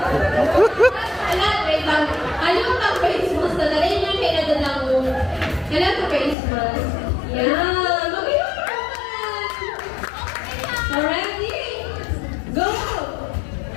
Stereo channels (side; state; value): right; drops out; at 6.4 s